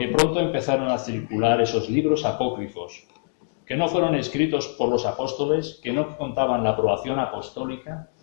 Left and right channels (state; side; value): silent; right; digital silence